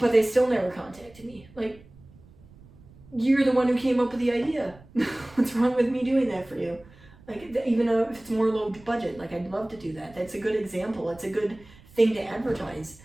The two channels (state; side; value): noise; right; rumble, 24 dB below the sound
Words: they still never contacted me. Like, you're the one who came up with the idea. What's wrong with me doing that for you? Like, even if it's more low budget, like, I'd love to do that. That's a good example. It's a good thing to advertise.